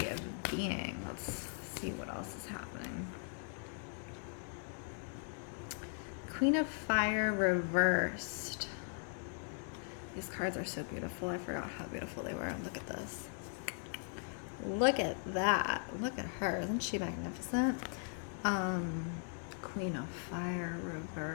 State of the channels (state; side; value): silent; right; 52 dB below the other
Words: of being. Let's see what else is happening. Queen of Fire reversed. These cards are so beautiful. I forgot how beautiful they were. Look at this. Look at that. Look at her. Isn't she magnificent? Queen of Fire